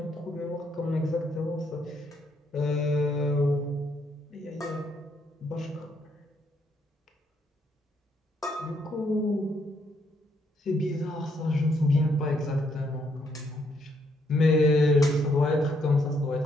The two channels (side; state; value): both; normal; correlation 0.73